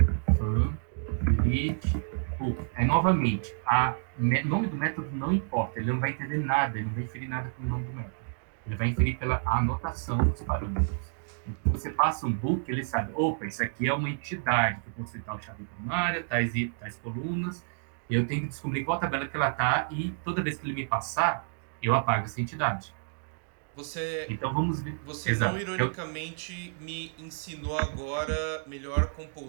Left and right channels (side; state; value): left; silent; digital silence